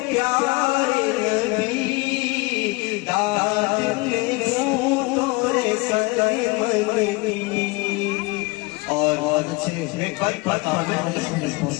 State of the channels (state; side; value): quieter; right; 25.2 dB